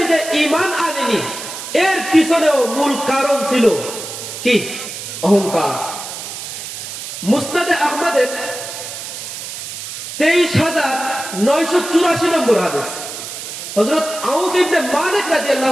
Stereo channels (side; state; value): right; noise; hiss, 9 dB below the sound